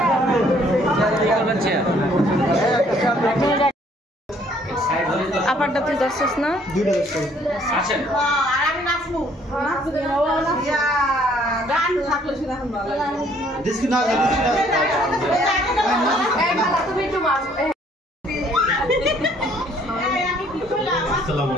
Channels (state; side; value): normal; both; correlation 0.62